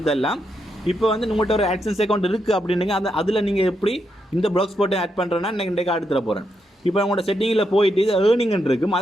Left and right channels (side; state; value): both; normal; correlation 0.81